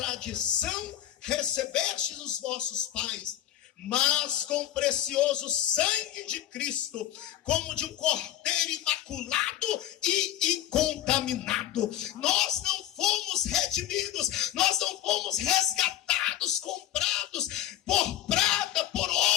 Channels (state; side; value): quieter; right; 12.3 dB